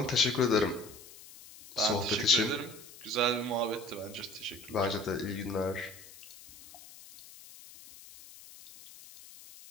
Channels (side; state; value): left; noise; hiss, 18 dB below the sound